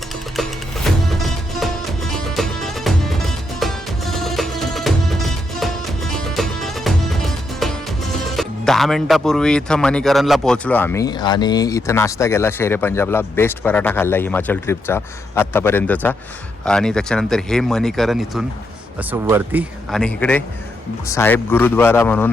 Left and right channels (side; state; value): both; normal; correlation 0.80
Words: दहा मिनिटापूर्वी इथं मणीकरणला पोहोचलो आम्ही आणि इथं नाश्ता केला. शेरे पंजाबला बेस्ट पराठा खाल्ला हिमाचल ट्रिपचा आत्तापर्यंतचा. आणि त्याच्यानंतर हे मणीकरण इथून असं वरती आणि इकडे साहेब गुरुद्वारा